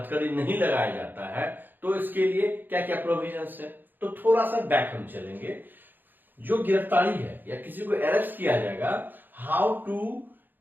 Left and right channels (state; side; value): late; left; 0.090 ms